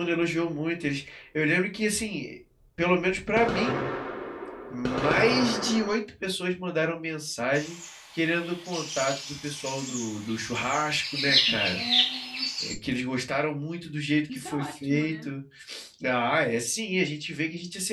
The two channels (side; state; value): both; identical; correlation 1.00